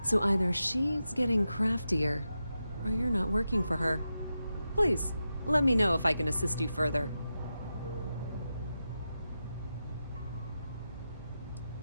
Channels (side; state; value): both; inverted; correlation -0.90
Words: so either she's getting craftier, or you're not working for her. Please, let me know if I can assist you further.